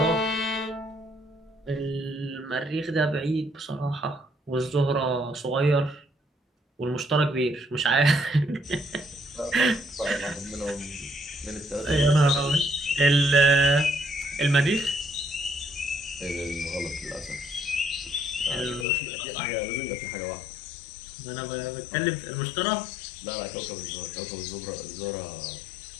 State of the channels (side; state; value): right; drops out; at 18.9 s